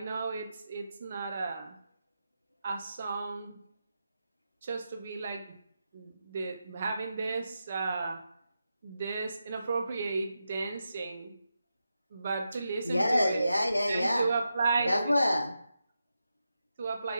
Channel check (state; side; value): inverted; both; correlation -0.88